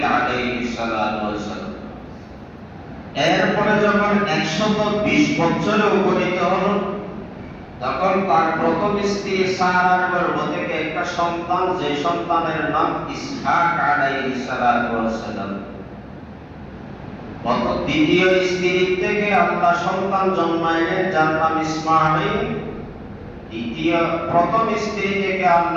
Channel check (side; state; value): both; identical; correlation 1.00